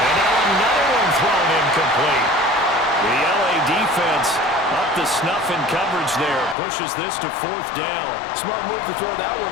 Thrown incomplete. The LA defense up to snuff in coverage there. Pushes this to 4th down. Smart move to throw that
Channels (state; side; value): drops out; right; at 6.6 s